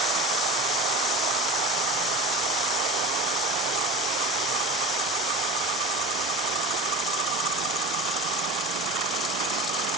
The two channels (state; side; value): normal; both; correlation 0.34